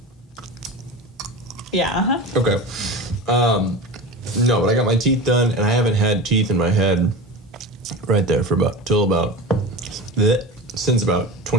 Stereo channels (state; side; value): normal; both; correlation 0.30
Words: Yeah, Okay. No, but I got my teeth done, and I haven't had teeth in my head right there since about